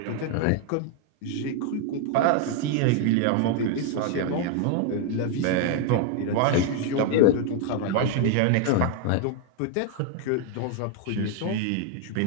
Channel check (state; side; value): different; both; correlation 0.00